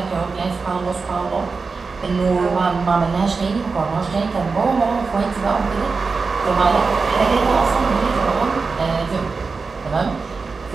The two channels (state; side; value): quieter; left; 4.5 dB